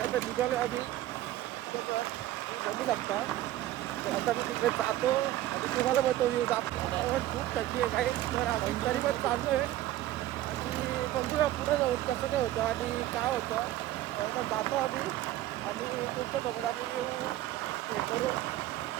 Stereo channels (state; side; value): quieter; left; 14.5 dB